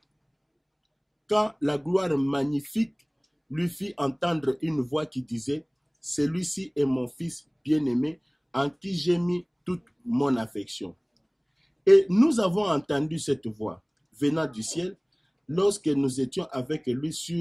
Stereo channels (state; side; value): identical; both; correlation 1.00